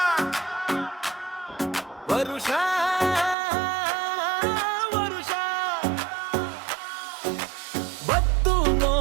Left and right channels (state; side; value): drops out; left; at 3.4 s